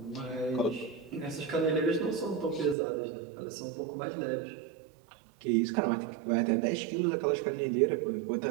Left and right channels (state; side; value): drops out; left; at 2.8 s